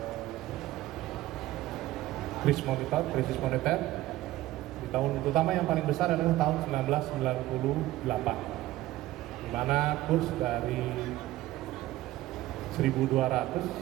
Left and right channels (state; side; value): quieter; left; 16.0 dB